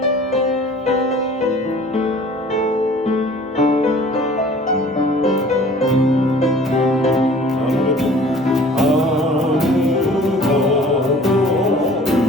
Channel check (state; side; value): normal; both; correlation 0.49